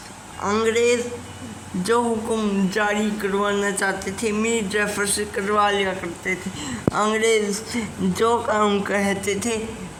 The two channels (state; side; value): identical; both; correlation 1.00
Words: अंग्रेज़ जो हुक्म जारी करवाना चाहते थे मीर जाफ़र से करवा लिया करते थे। अंग्रेज़ जो काम कहते थे